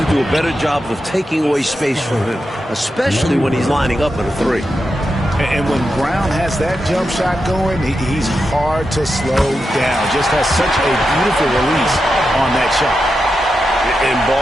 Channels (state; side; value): normal; both; correlation 0.88